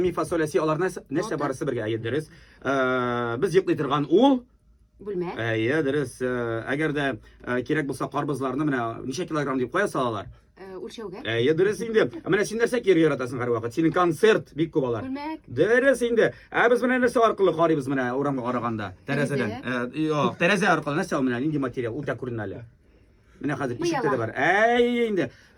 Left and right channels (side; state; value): both; identical; correlation 1.00